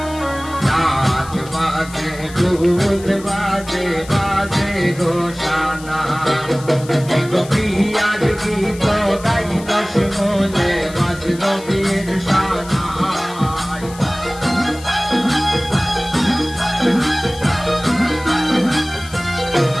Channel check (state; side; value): noise; left; hiss, 18 dB below the sound